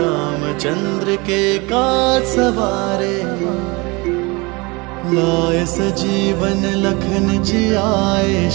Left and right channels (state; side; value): quieter; left; 26.0 dB